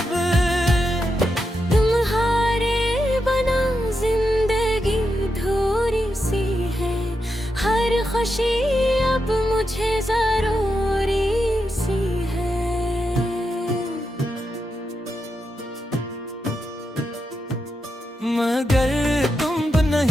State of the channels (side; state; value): both; normal; correlation 0.86